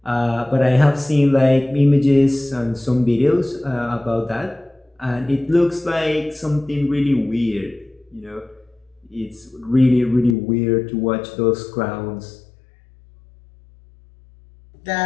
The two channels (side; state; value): right; drops out; at 10.4 s